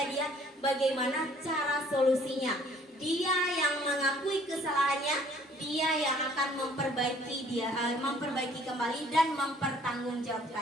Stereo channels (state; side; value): normal; both; correlation 0.58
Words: dia bagaimana cara solusinya. Dia yang mengakui kesalahannya, dia yang akan memperbaiki kembali dan